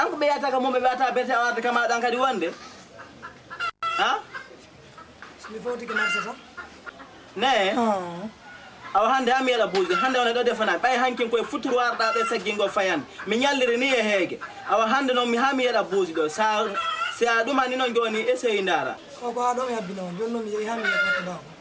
ko be yata ka mo be yata bete awata kama dan kadi wonde ha mi foti ke marsa sa ne aw hande am yela buuji hande wona do defana bay hankin koy futuru warda be saggingo fayan mi nyalliri ni e heege aw hande non mi hami yela buuji do sa aduma ni non joni essay ndara ko ko ado mi habbino jonno mi yehi hami yata daw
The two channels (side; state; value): both; identical; correlation 1.00